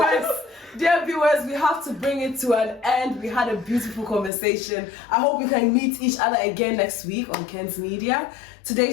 dear viewers, we have to bring it to an end. We had a beautiful conversation. I hope we can meet each other again next week on Ken's Media.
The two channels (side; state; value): right; drops out; at 4.3 s